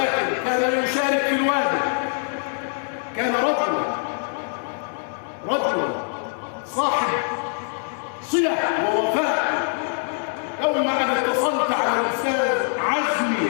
كان يشارك في الواجب، كان رجلا صاحب صلة ووفاء. يوم أن اتصلت على الأستاذ عزمي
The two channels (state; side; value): silent; right; 55 dB below the other